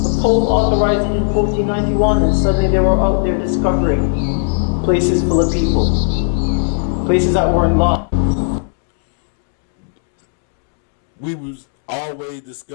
Pope authorized it in 1491, and suddenly they were out there discovering places full of people, places that weren't lost. We was always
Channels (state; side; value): silent; right; 69 dB below the other